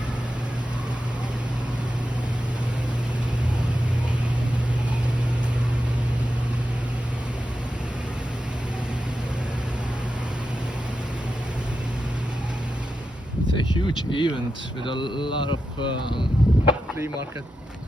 It's a huge event with a lot of flea market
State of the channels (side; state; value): both; normal; correlation 0.89